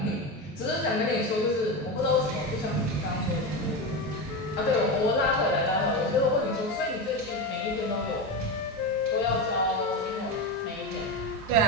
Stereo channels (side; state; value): both; normal; correlation 0.18